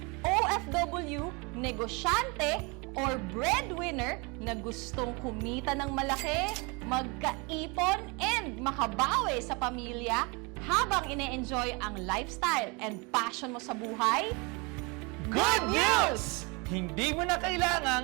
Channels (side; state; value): left; quieter; 29.1 dB